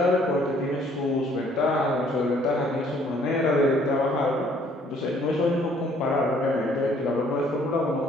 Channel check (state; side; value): normal; both; correlation 0.61